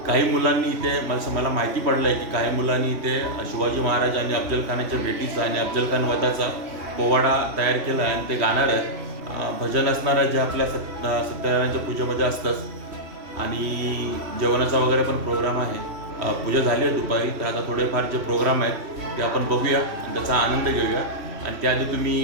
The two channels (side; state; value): left; late; 3.1 ms